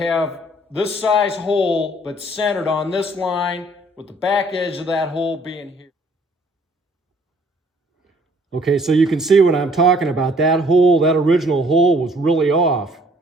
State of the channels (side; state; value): both; normal; correlation 0.59